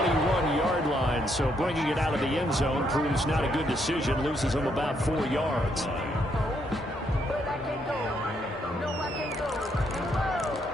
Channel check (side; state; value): both; normal; correlation 0.74